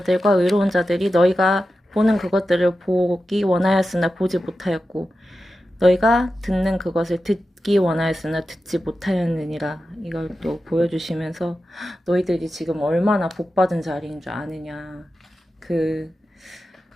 의로운 자들이 너희가 보는 그것들을 보기 원하였으나 보지 못하였고 너희가 듣는 그것을 듣기 원하였으나 듣지 못하였느니라. 이걸 또 보여주시면서 너희들이 지금 얼마나 복받은 자리인 줄 아느냐. 그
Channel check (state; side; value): normal; both; correlation 0.92